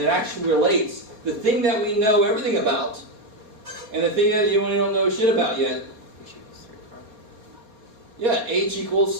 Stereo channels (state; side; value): late; left; 4.6 ms